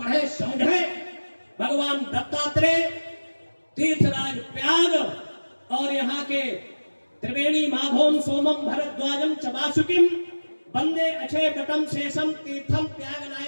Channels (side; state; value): both; inverted; correlation -1.00